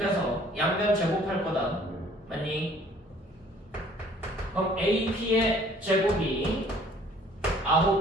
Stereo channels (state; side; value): normal; both; correlation 0.56